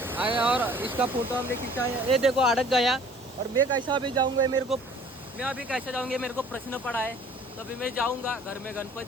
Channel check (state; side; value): normal; both; correlation 0.52